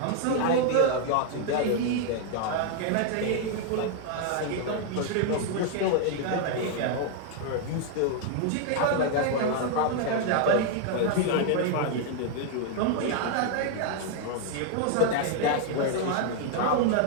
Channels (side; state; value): both; different; correlation 0.00